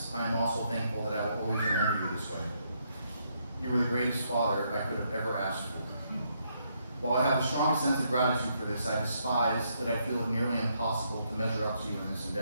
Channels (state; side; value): inverted; both; correlation -0.75